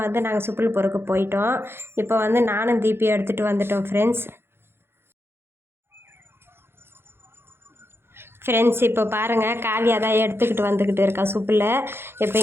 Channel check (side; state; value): left; late; 0.11 ms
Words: வந்து நாங்கள் சுப்பில் பொறுக்க போயிட்டோம். இப்போ வந்து நானும் தீபி எடுத்துகிட்டு வந்துட்டோம் ஃப்ரெண்ட்ஸ் இப்போ பாருங்கள், காவியா தான் எடுத்துக்கிட்டு வந்துக்கிட்டு இருக்கா சுப்பில். இப்போ